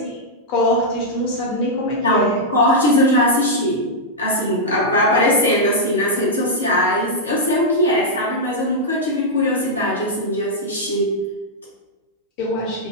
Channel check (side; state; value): both; normal; correlation -0.06